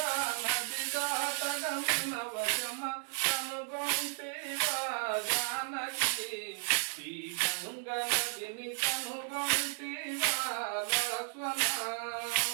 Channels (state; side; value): silent; left; 55 dB below the other